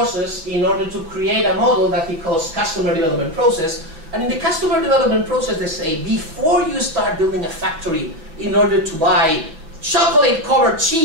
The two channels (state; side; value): late; left; 6.2 ms